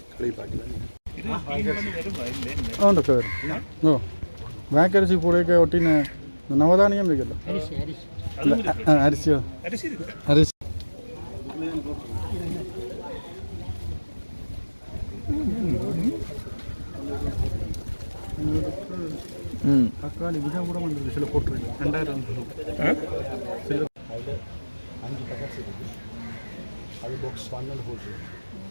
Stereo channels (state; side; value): inverted; both; correlation -1.00